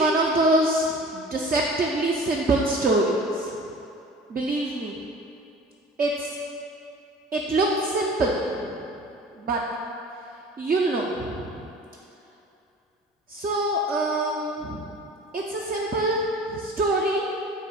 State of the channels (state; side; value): normal; both; correlation 0.42